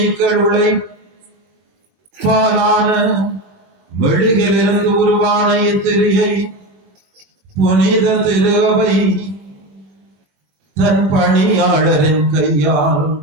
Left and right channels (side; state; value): left; late; 21 ms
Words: பாலான மெழுகிலிருந்து உருவான இத்திரியை புனித திருவை தன் பணியாளரின் கையால்